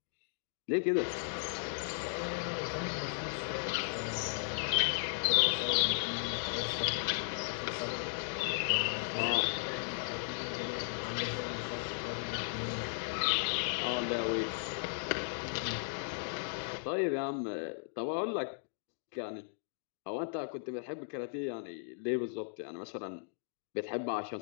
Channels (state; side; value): silent; right; digital silence